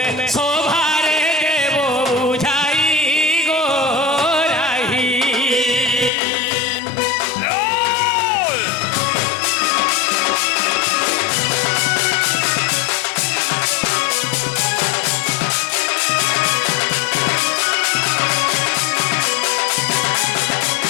শোভারে দেব বুঝাই গো রাহি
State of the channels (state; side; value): drops out; right; at 6.1 s